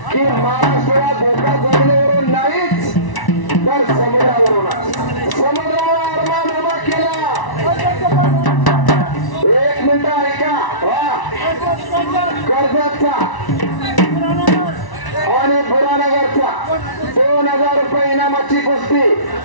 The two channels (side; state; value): right; late; 1.0 ms